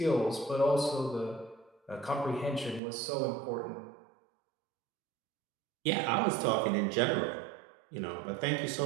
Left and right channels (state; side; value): drops out; left; at 2.8 s